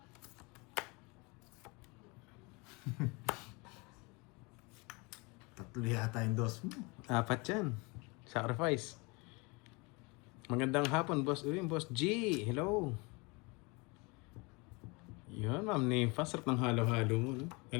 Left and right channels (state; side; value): quieter; right; 28.0 dB